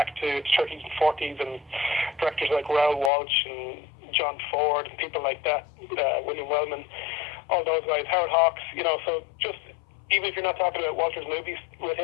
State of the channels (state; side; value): drops out; right; at 3.1 s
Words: to the 30s and 40s, and directors like Raoul Walsh and John Ford and people like that, William Wellman, all those guys, Howard Hawks. So just even if you're not talking about Walter's movies with